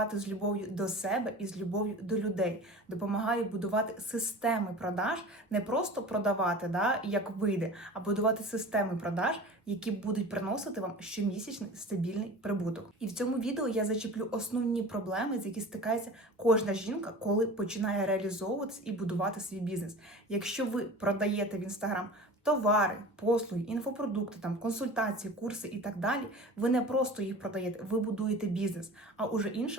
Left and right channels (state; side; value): normal; both; correlation 0.37